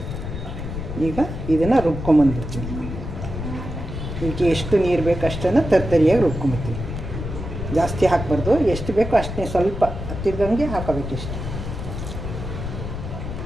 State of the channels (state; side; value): noise; left; rumble, 6 dB below the sound